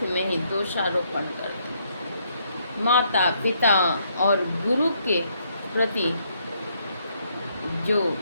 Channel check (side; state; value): both; inverted; correlation -0.72